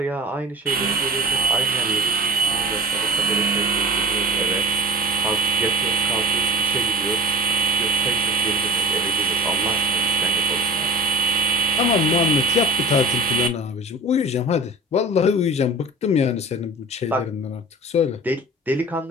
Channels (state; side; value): normal; both; correlation 0.39